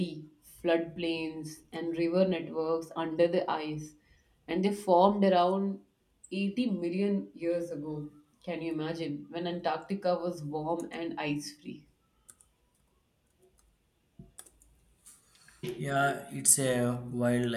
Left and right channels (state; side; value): identical; both; correlation 1.00